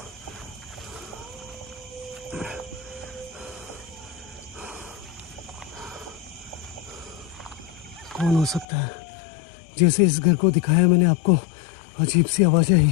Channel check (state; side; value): drops out; right; at 8.7 s